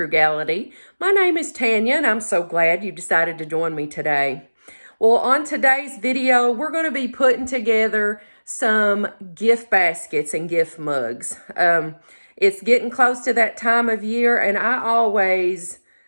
My name is Tanya, and I'm so glad you decided to join me today. Well, on today's video, we're going to be putting together some gift baskets and gift mugs. It's getting close to that time of year, and I always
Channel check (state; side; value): inverted; both; correlation -1.00